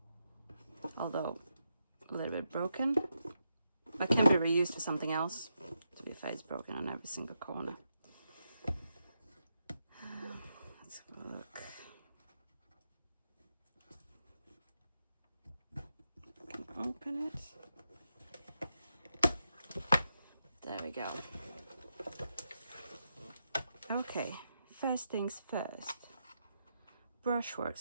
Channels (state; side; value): inverted; both; correlation -0.84